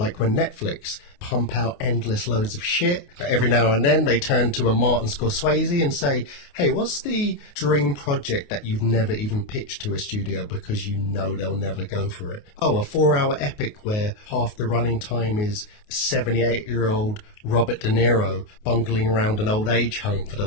when Netflix pump out endless loads of shit, but every now and then they turn to a Martin Scorsese and say, hey, what's the dream project that you've never even pitched to a studio because they'll never go for it? Oh, a 4-hour epic where half the running time is 78-year-old Robert De Niro bungling around an old age home for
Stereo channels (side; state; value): right; late; 28 ms